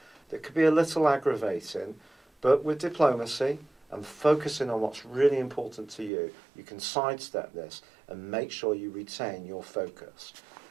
that could be a little aggravating, but with diplomacy and focusing on what's really important to you, you can sidestep this and make sure you retain your focus.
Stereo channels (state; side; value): drops out; left; at 6.1 s